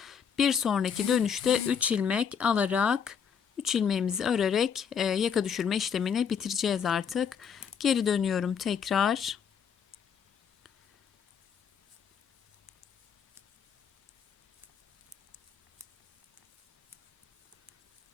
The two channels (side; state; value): right; quieter; 7.2 dB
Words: Bir sonraki dönüşte 3 ilmek alarak 3 ilmeğimizi örerek yaka düşürme işlemini bitireceğiz artık. Geri dönüyorum tekrar.